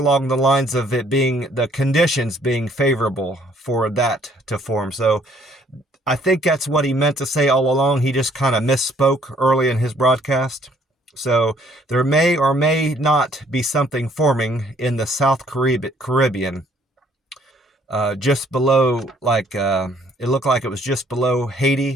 the lines of it being the conditions being favorable for that to form. So I think that's what he meant to say all along. He just kind of misspoke early in his broadcast. So there may or may not be something forming in the South Caribbean. Just below, it looked like it was just below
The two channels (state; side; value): normal; both; correlation 0.62